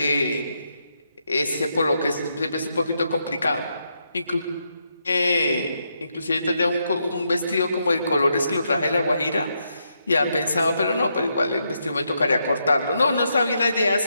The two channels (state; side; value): inverted; both; correlation -0.80